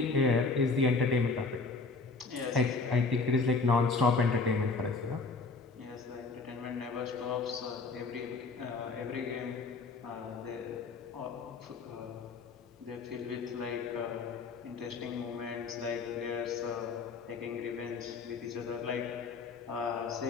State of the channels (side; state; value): right; quieter; 4.1 dB